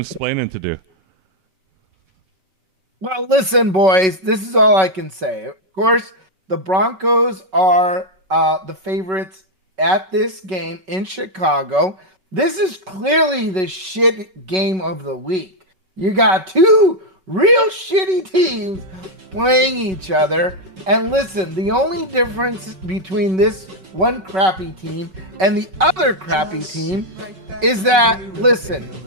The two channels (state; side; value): late; left; 5.3 ms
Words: explaining to do. Well, listen, boys, this is all I can say. Of course, the Broncos are the favorites at this game in Chicago. This is clearly the shit game of the week. You got 2 real shitty teams playing each other. And listen, the only difference between this one crappy team and the other crappy team is that, listen,